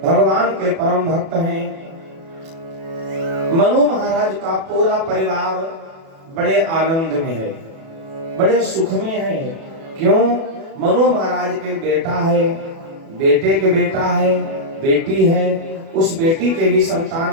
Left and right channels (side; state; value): left; late; 37 ms